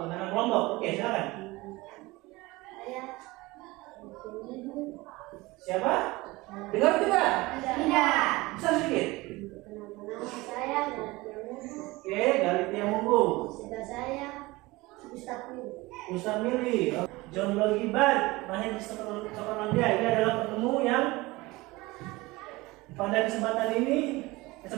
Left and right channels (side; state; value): left; quieter; 21.5 dB